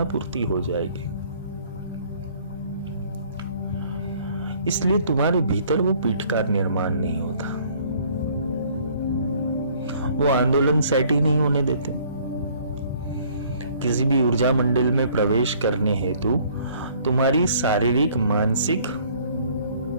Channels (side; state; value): both; inverted; correlation -0.58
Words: पूर्ति हो जाएगी। इसलिए तुम्हारे भीतर वो पीठ का निर्माण नहीं होता, वो आंदोलन सेट ही नहीं होने देते। किसी भी ऊर्जा मंडल में प्रवेश करने हेतु तुम्हारी शारीरिक, मानसिक